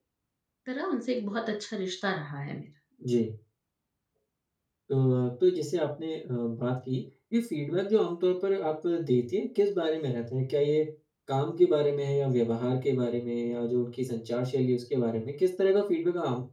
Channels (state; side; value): identical; both; correlation 1.00